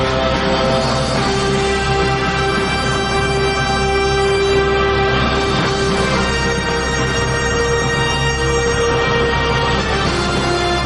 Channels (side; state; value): both; identical; correlation 1.00